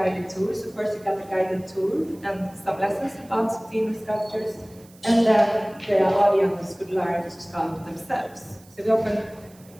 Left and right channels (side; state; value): right; noise; hiss, 26 dB below the sound